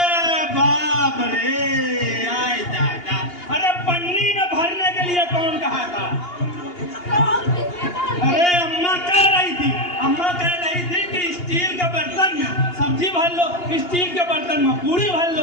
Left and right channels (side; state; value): right; late; 2.8 ms